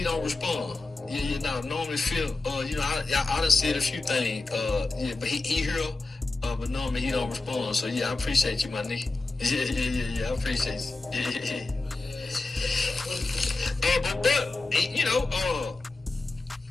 don't respond. Normally feel, I done said a few things, but he here, but normally he don't respond. So yeah, I appreciate you, my nigga. Yeah, I appreciate you.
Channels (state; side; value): quieter; right; 3.3 dB